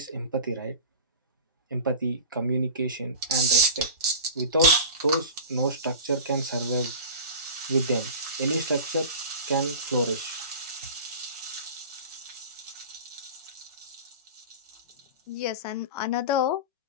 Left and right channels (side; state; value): both; inverted; correlation -0.35